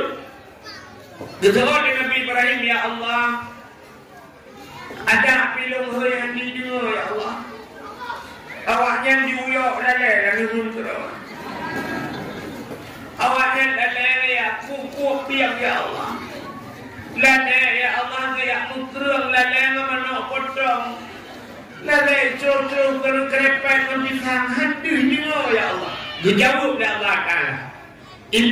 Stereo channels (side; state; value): both; identical; correlation 1.00